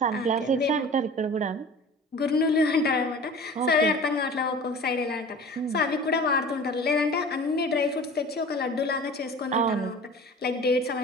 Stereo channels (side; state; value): both; normal; correlation 0.40